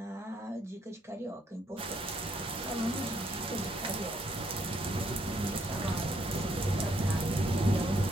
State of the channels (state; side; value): normal; both; correlation 0.71